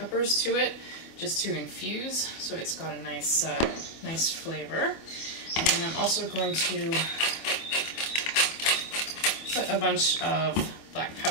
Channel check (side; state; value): right; late; 25 ms